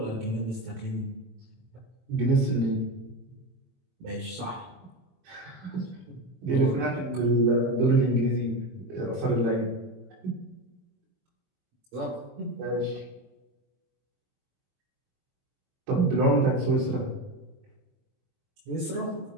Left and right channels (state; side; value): late; left; 22 ms